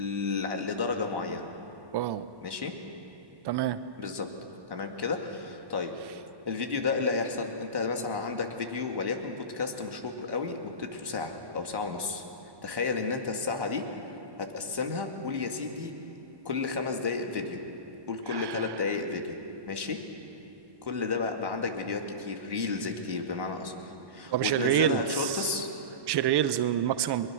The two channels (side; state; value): left; late; 1.1 ms